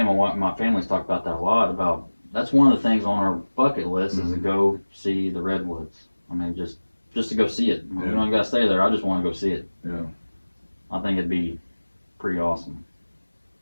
family's talked about that a lot. About that's one of the things on our bucket list is to go see the redwoods. I mean, just to go see it. You don't got to stay there. I just want to go see it. Yeah. I think it'd be pretty awesome.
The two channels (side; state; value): both; inverted; correlation -1.00